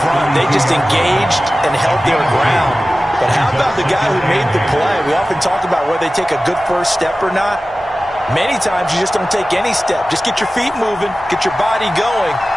front. They just engaged and held their ground. But how about the guy who made the play? We often talk about whether they take a good first step or not. Many times you just don't take any step. Just get your feet moving, get your body going,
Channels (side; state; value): both; normal; correlation 0.96